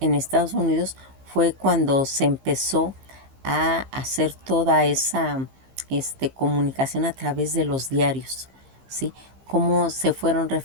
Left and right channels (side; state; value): left; late; 15 ms